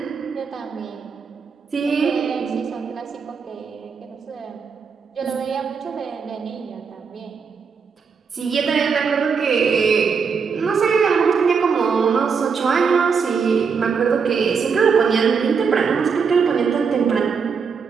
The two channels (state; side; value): quieter; left; 5.8 dB